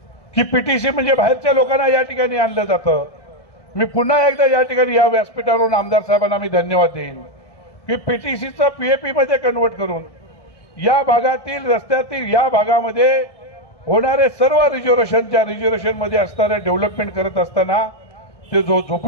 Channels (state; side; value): late; right; 1.6 ms